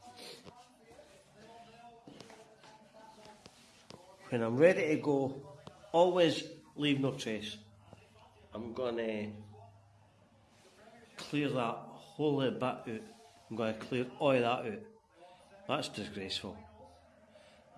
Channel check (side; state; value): both; identical; correlation 1.00